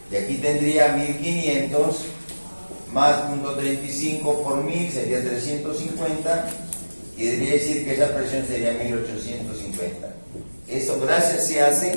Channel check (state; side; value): inverted; both; correlation -1.00